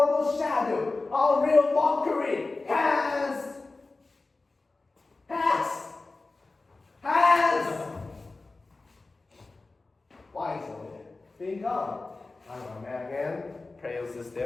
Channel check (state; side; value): quieter; right; 3.5 dB